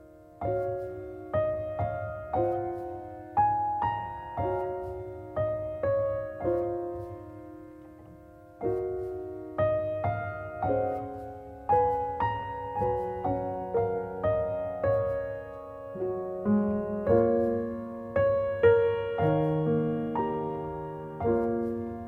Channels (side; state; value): both; identical; correlation 1.00